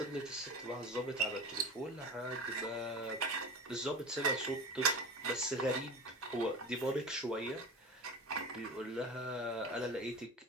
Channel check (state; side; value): normal; both; correlation 0.31